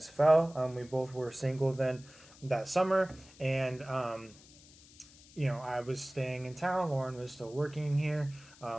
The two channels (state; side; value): noise; left; hiss, 23 dB below the sound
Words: fell. We both were single then that summer, and I was staying in town. Lauren was still working here.